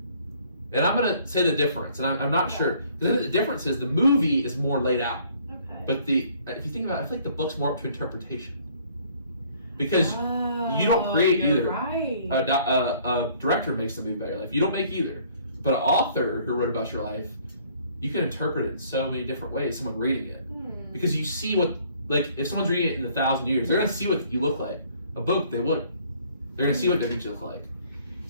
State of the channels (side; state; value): both; inverted; correlation -0.59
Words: And I'm going to say the difference, and I'm not sure. The difference is the movie is more laid out. Okay. But if you think about it, I feel like the book's more up to interpretation. Because you don't create either. Right. A director makes the movie about your life. You don't make either. But an author who wrote about your life, you can interpret it in so many different ways, someone reading it. Because you see what, like, if someone's reading it in 1,000 years, they're going to see what you look like. A book, they wouldn't. They're going to see what different you look like.